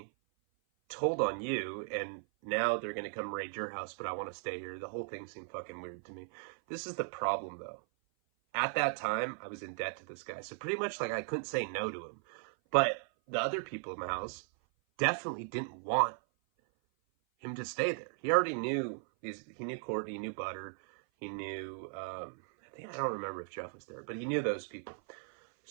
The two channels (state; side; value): silent; left; 53 dB below the other